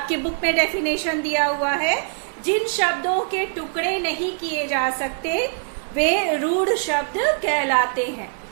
बुक में डेफिनेशन दिया हुआ है, जिन शब्दों के टुकड़े नहीं किए जा सकते वे रूढ़ शब्द कहलाते हैं।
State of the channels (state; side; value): silent; left; digital silence